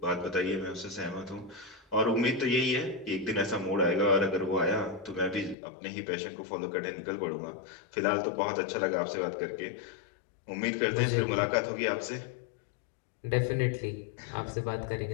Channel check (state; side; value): drops out; right; at 5.6 s